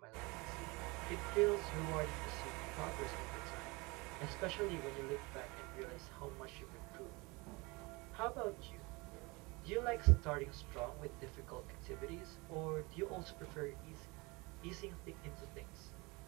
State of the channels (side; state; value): left; quieter; 25.6 dB